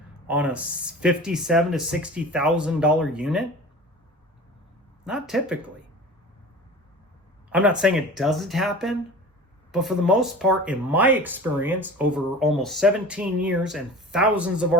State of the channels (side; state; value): both; normal; correlation 0.37